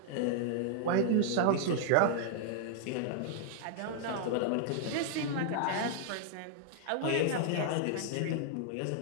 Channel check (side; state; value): both; different; correlation -0.01